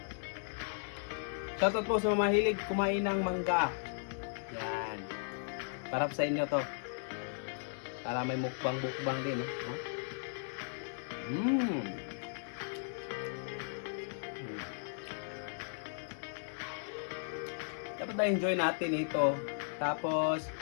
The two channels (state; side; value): silent; right; digital silence